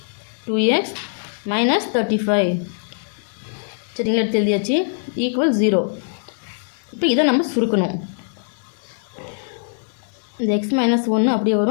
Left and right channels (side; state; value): right; silent; digital silence